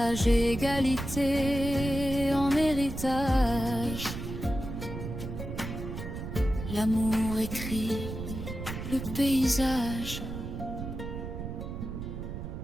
égalité en héritage. L'amour écrit le paysage.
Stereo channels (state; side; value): noise; right; rumble, 7 dB below the sound